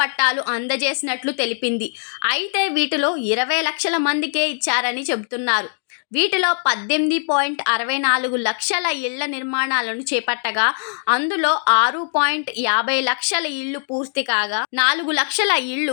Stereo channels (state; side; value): silent; right; digital silence